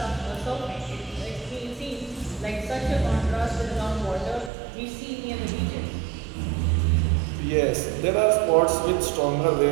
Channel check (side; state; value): left; drops out; at 4.5 s